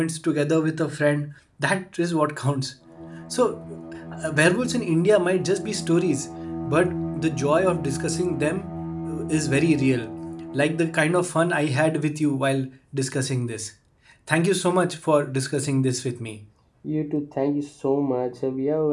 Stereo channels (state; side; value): identical; both; correlation 1.00